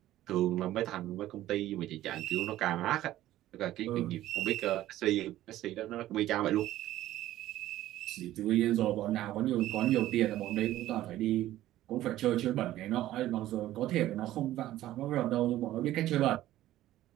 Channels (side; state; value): left; quieter; 14.3 dB